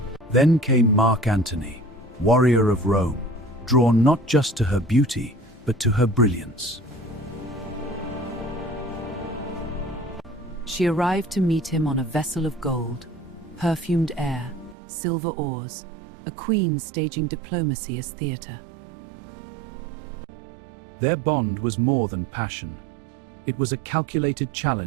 Then came Mark Antony, warrior of Rome, drawn not just to her beauty, but to her brilliance. She arrived to meet him on a vessel of gold, perfumed air, silver oars, a queen staging diplomacy as theater. Their bond was more than passion. It was a calculated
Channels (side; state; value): left; drops out; at 14.8 s